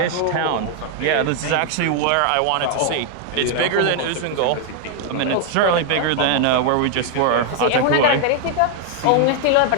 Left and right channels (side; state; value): both; different; correlation 0.00